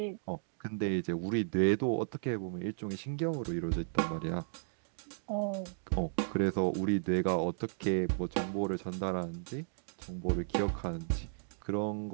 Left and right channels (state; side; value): silent; left; digital silence